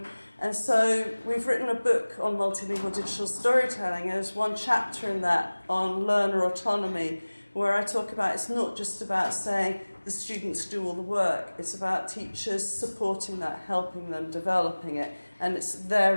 And so we've written a book on multilingual digital storytelling. There's one chapter in that on learner autonomy, where I talk about it's not just about saying the students do all the work. It's about teachers supporting that, helping them, developing it. And they're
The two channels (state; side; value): inverted; both; correlation -1.00